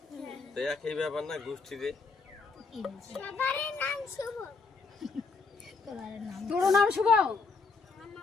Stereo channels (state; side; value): quieter; right; 4.4 dB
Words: তো একই ব্যাপার না গোষ্ঠীতে। তোর নাম শুভ?